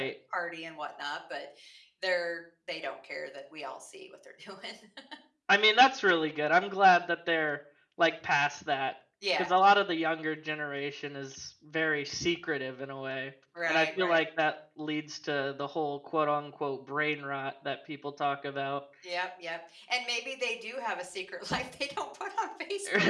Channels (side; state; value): both; identical; correlation 1.00